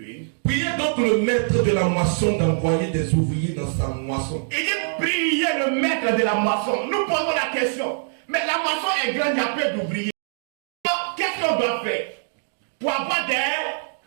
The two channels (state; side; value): silent; left; digital silence